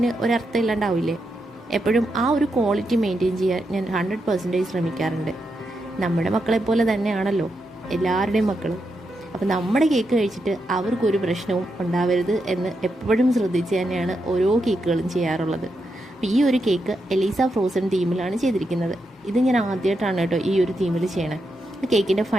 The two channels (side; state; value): both; normal; correlation 0.84